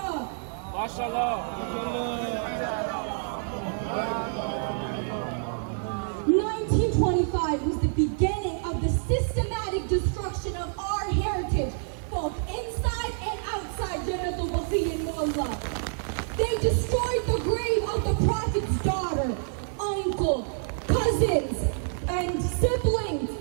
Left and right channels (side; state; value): left; silent; 60 dB below the other